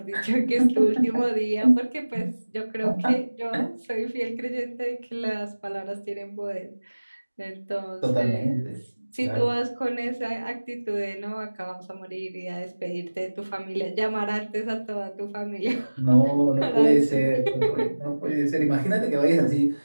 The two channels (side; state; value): both; inverted; correlation -1.00